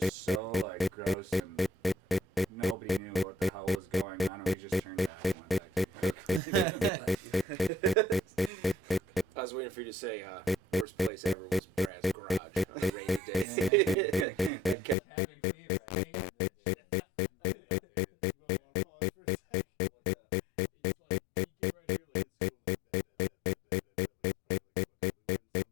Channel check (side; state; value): right; drops out; at 15.0 s